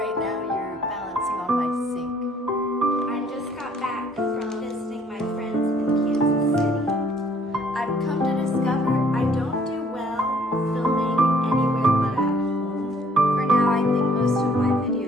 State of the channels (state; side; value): normal; both; correlation 0.61